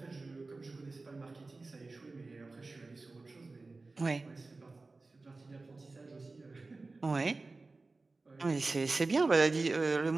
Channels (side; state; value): left; quieter; 3.5 dB